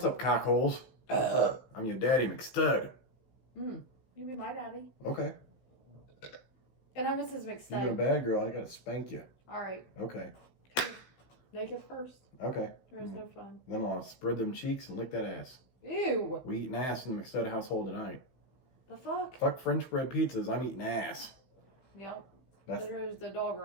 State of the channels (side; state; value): right; late; 16 ms